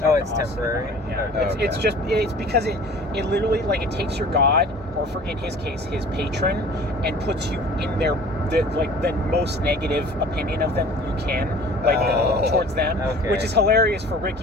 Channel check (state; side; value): normal; both; correlation 0.46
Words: temporary. Yeah, it's because it literally like it takes your god, or for in his case his patron, and puts you in the most negative opinion of them you can, towards them, which is hilarious for